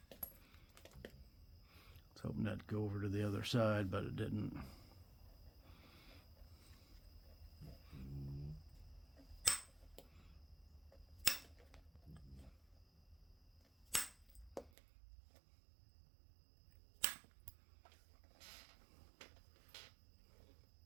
I was hoping that'd go over to the other side, but it didn't.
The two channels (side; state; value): left; drops out; at 14.7 s